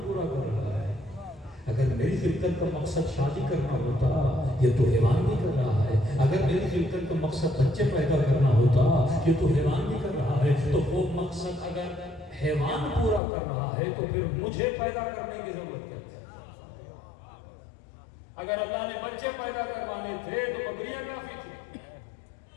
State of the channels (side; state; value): right; drops out; at 13.2 s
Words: پورا کر رہا ہے، اگر میری خلقت کا مقصد شادی کرنا ہوتا یہ تو حیوان بھی کر رہا ہے، اگر میری خلقت کا مقصد بچے پیدا کرنا ہوتا یہ تو حیوان بھی کر رہا ہے۔ تو وہ مقصد اگر حیوان پورا کر رہا ہے تو پھر مجھے پیدا کرنے کی ضرورت کیا ہے؟ اگر اللہ نے بچے پیدا کروانے تھے تو بکریاں کافی تھی،